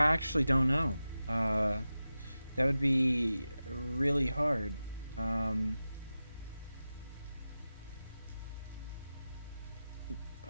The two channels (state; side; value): inverted; both; correlation -0.94